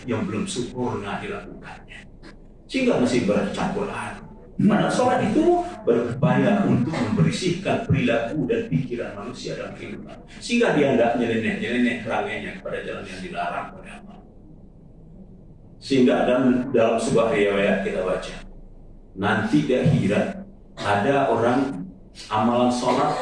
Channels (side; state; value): both; identical; correlation 1.00